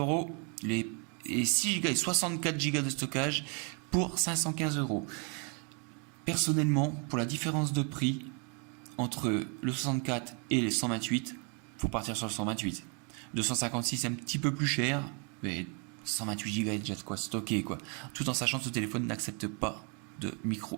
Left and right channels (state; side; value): quieter; left; 37.1 dB